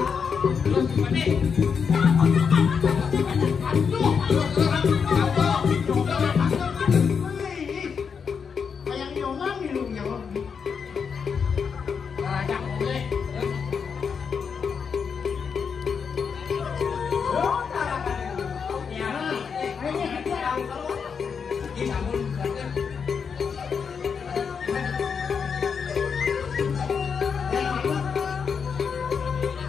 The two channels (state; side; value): quieter; right; 6.3 dB